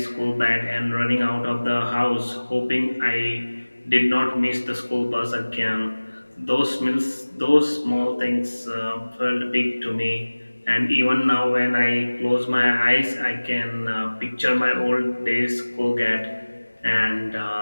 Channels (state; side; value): inverted; both; correlation -1.00